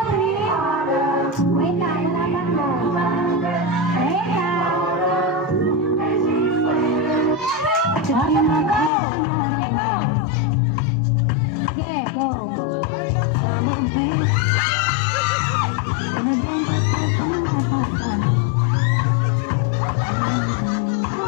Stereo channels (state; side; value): drops out; right; at 8.9 s